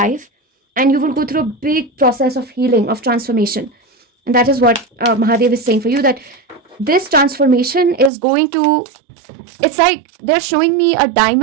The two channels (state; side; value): drops out; left; at 8.1 s